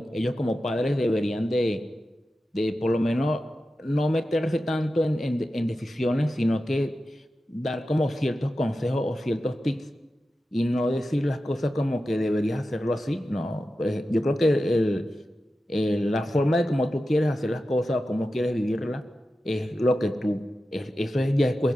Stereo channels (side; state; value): both; normal; correlation 0.92